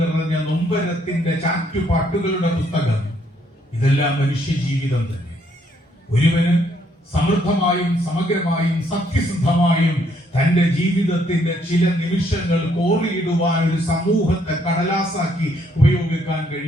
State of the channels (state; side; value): normal; both; correlation 0.70